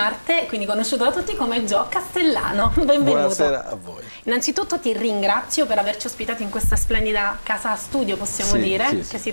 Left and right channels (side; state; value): both; inverted; correlation -1.00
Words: quindi conosciuto da tutti come Gio Castellano. Benvenuto. Buonasera a voi. Innanzitutto ti ringrazio per averci ospitato in questa splendida casa studio, possiamo dire, che si